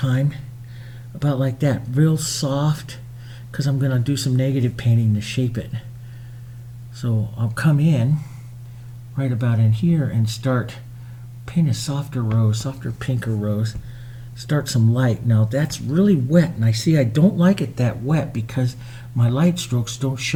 about like that, real soft, because I'm going to do some negative painting to shape it. So I'll come in right about in here and start paint a softer rose, softer pinker rose. Start some light. Now that's really wet, and I see I don't like it that wet because my light strokes don't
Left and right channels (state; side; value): identical; both; correlation 1.00